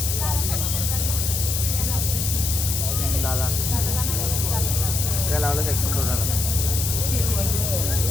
लाला काय लावलं सेक्शन कोणाला.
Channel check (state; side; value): noise; left; hiss, 1 dB below the sound